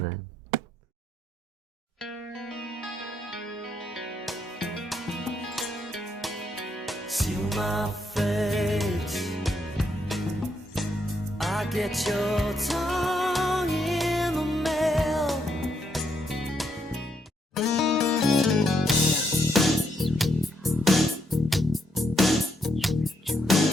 they? Seal my fate, I get your tongue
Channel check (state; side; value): normal; both; correlation 0.77